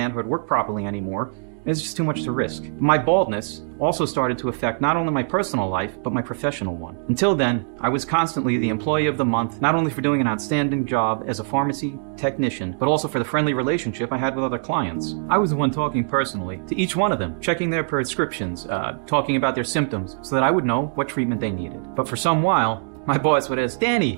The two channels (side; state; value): left; silent; digital silence